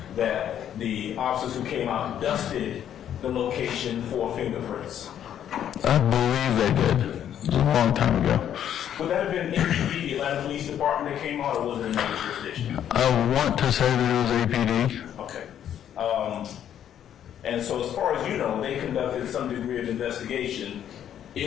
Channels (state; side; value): quieter; right; 10.0 dB